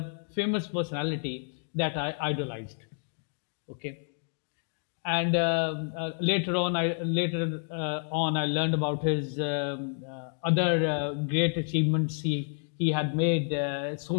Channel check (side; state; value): right; silent; 57 dB below the other